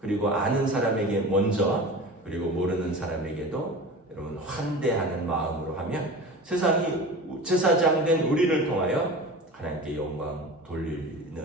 아는 사람에게 먼저 그리고 모르는 사람에게도 여러분 환대하는 마음으로 하면 세상이 제사장된 우리를 통하여 하나님께 영광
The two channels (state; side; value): normal; both; correlation 0.35